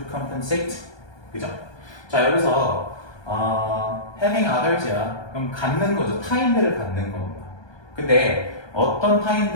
compensate, 그죠? 자 여기서 having others야. 그럼 갖는 거죠. 타인들을 갖는 겁니다. 근데 어떤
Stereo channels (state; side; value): late; right; 1.2 ms